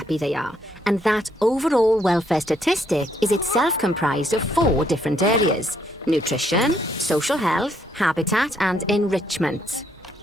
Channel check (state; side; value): normal; both; correlation 0.72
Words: they are. And that overall welfare statistic is itself comprised of 4 different areas: nutrition, social health, habitat, and enrichment.